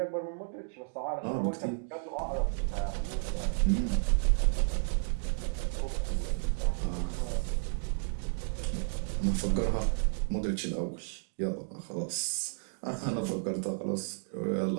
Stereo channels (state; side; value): silent; left; digital silence